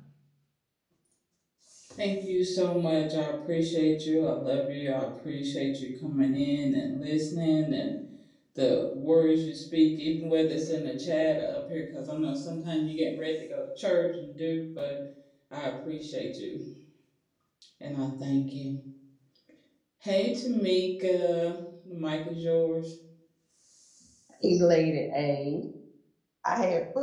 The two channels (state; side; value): identical; both; correlation 1.00